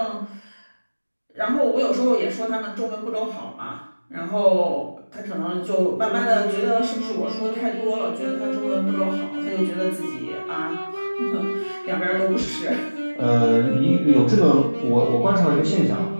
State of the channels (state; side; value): inverted; both; correlation -1.00